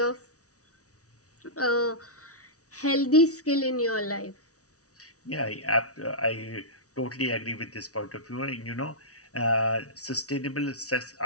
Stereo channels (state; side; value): late; right; 0.66 ms